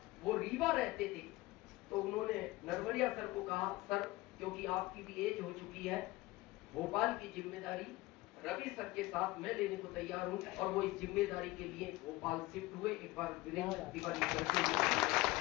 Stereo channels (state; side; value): quieter; right; 19.6 dB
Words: वो रीवा रहते थे, तो उन्होंने नरवरिया सर को कहा, सर क्योंकि आपकी भी एज हो चुकी है, भोपाल की जिम्मेदारी रवि सर के साथ मैं लेने को तैयार हूं। और वो इस जिम्मेदारी के लिए भोपाल शिफ्ट हुए। एक बार वीरेंद्र तिवारी सर के लिए।